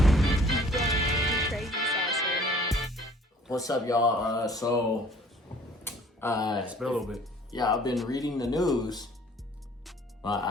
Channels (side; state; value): both; normal; correlation 0.54